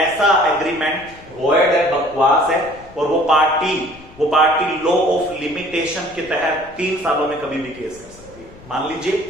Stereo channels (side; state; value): left; noise; rumble, 22 dB below the sound